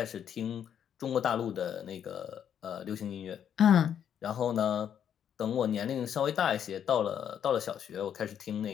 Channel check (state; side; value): quieter; right; 9.0 dB